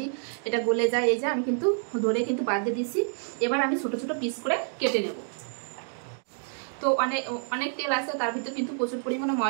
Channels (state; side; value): silent; left; digital silence